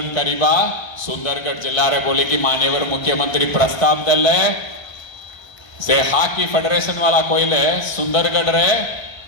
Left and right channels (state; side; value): late; right; 1.3 ms